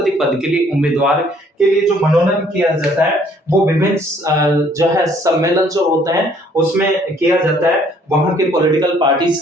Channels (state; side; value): normal; both; correlation 0.62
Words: पद के लिए उम्मीदवार के लिए जो मनोनयन किया जाता है वो विभिन्न जो है सम्मेलन जो होते हैं उसमें किया जाता है, वहां के पॉलिटिकल पार्टीज